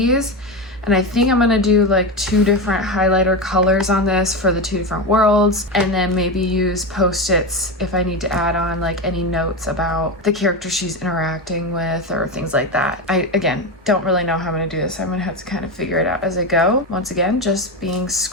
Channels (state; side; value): normal; both; correlation 0.17